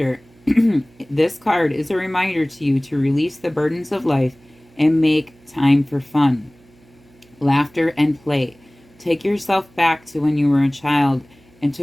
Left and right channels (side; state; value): right; noise; hum, 29 dB below the sound